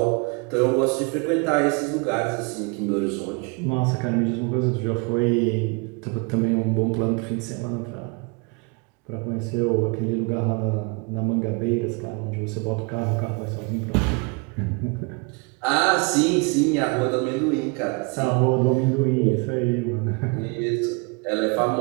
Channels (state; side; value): quieter; left; 31.6 dB